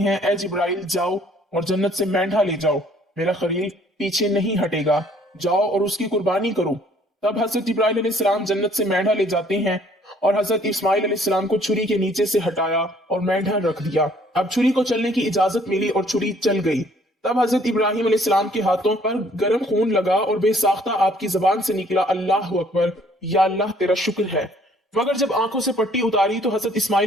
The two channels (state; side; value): normal; both; correlation 0.60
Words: اے جبرائیل جاؤ اور جنت سے مینڈھا لے جاؤ، میرا خلیل پیچھے نہیں ہٹے گا، جاؤ اور اس کی قربانی کرو۔ تب حضرت جبرائیل علیہ السلام جنت سے مینڈھا لے جاتے ہیں اور حضرت اسماعیل علیہ السلام کو چھری کے نیچے سے ہٹایا اور مینڈھا رکھ دیا۔ اب چھری کو چلنے کی اجازت ملی اور چھری چل گئی۔ تب حضرت ابراہیم علیہ السلام کے ہاتھوں پر گرم خون لگا اور بے ساختہ آپ کی زبان سے نکلا اللہ اکبر، یا اللہ تیرا شکر ہے۔ مگر جب آنکھوں سے پٹی اتاری تو حضرت